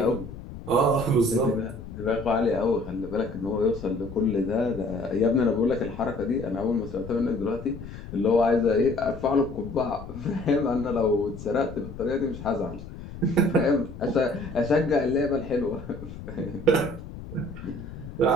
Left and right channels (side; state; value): left; noise; rumble, 12 dB below the sound